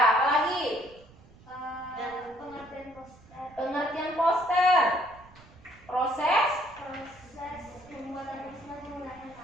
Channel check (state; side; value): noise; right; rumble, 24 dB below the sound